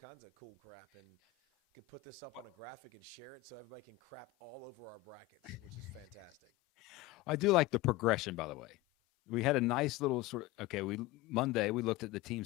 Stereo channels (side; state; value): right; quieter; 17.2 dB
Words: of cool crap, and can put this up on a graphic and share it so everybody can crap all over our brackets, which is fantastic. I do like the progression, by the way. We had a nice little Monday we looked at the